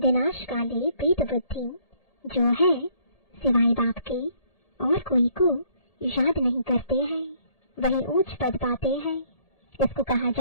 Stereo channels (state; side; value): late; right; 1.8 ms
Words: काले प्रीत बुद्धि जो है सिवाय बाप के और कोई को याद नहीं करते हैं, वही ऊंच पद पाते हैं। इसको कहा